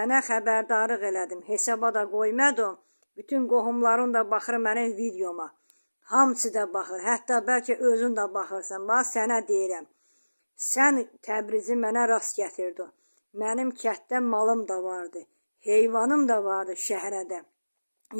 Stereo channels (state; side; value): inverted; both; correlation -1.00